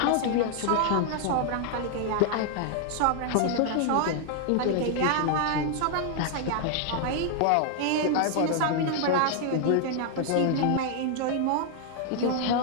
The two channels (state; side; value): different; both; correlation 0.00